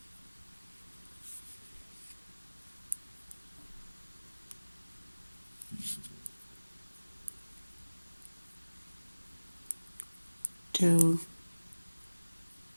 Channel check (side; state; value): both; inverted; correlation -1.00